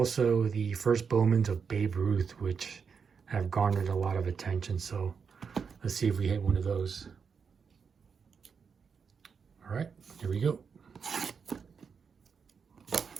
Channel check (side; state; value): left; quieter; 6.1 dB